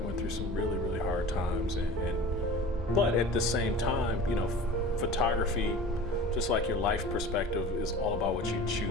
went through some really, really hard times, but at the same time, you know, photography, just like your life perspective, is all about what you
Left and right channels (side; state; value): both; normal; correlation 0.39